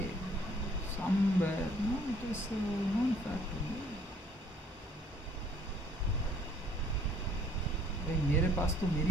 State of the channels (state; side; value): normal; both; correlation 0.59